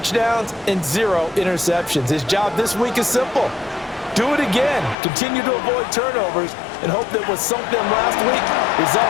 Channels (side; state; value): right; drops out; at 5.0 s